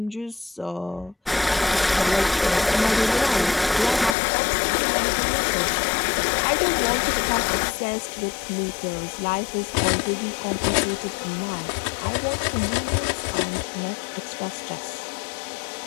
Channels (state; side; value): drops out; right; at 4.2 s